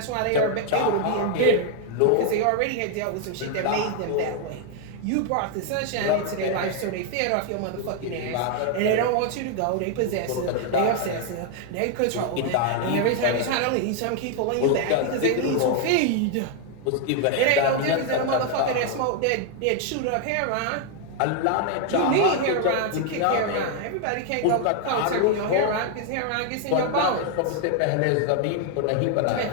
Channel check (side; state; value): both; different; correlation 0.01